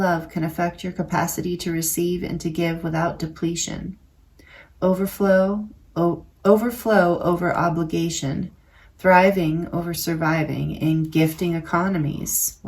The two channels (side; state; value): both; identical; correlation 1.00